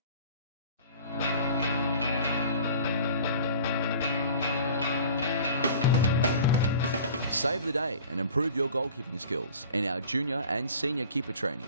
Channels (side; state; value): both; inverted; correlation -0.44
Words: Save the day and improve your goalkeeping skills in our junior and senior keeper